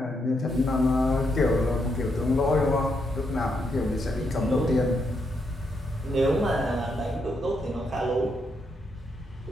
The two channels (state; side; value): normal; both; correlation 0.79